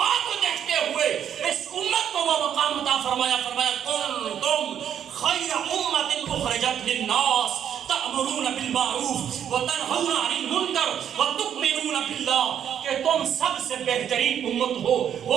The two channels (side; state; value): left; quieter; 9.2 dB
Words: کو دیکھتے ہوئے اس امت کو وہ مقام عطا فرمایا، کنتم خیر امت اخرجت للناس تأمرون بالمعروف وتنہون عن المنکر وتؤمنون باللہ، کہ تم سب سے بہترین امت ہو۔